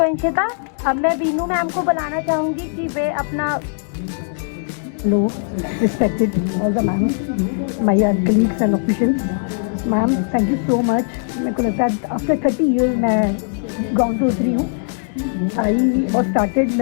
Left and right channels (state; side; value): silent; right; digital silence